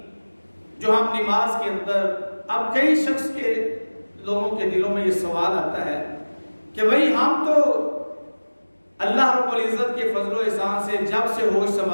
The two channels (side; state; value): both; inverted; correlation -1.00